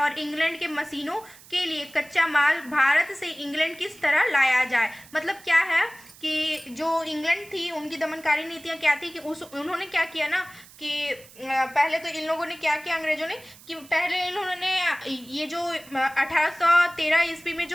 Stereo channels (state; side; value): noise; right; hiss, 22 dB below the sound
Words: इंग्लैंड के मशीनों के लिए कच्चा माल भारत से इंग्लैंड किस तरह लाया जाए। मतलब क्या है कि जो इंग्लैंड थी उनकी दमनकारी नीतियां क्या थी कि उन्होंने क्या किया ना कि पहले तो इन लोगों ने क्या किया, अंग्रेजों ने, कि पहले इन्होंने ये जो 1813 ईस्वी में